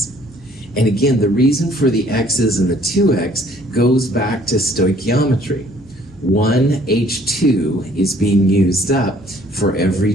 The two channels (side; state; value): right; noise; hum, 26 dB below the sound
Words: And again, the reason for the X's and the 2X goes back to stoichiometry. 1 H2 is being used up for